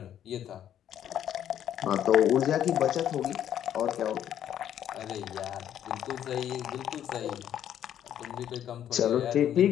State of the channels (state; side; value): quieter; right; 10.4 dB